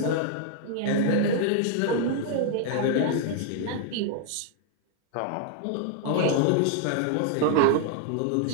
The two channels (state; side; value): different; both; correlation 0.00